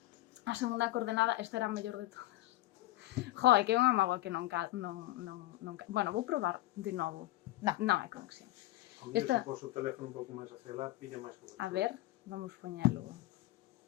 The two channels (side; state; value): right; quieter; 17.1 dB